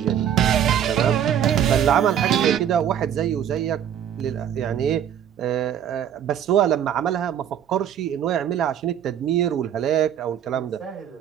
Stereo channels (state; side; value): quieter; left; 9.5 dB